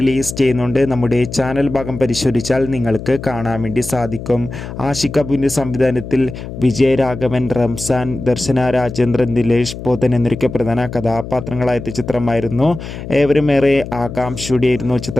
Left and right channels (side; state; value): left; noise; hum, 10 dB below the sound